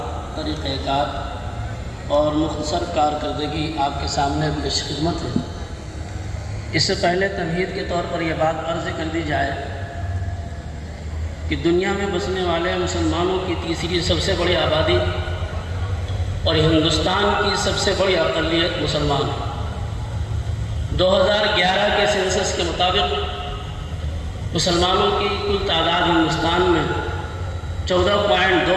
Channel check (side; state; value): both; identical; correlation 1.00